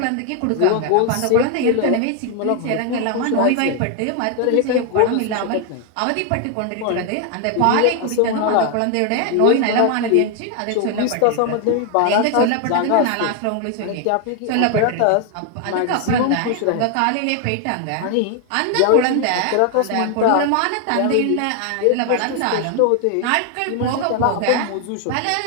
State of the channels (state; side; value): different; both; correlation 0.00